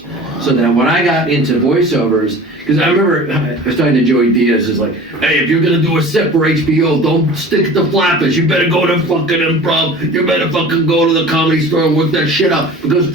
So that when I got into voiceovers, because I remember I was talking to Joey Diaz, is like, hey, if you're gonna do a set for HBO, don't stick to Flappers. You better go to fucking improv. You better fucking go to the Comedy Store and work that shit out, because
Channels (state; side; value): normal; both; correlation 0.40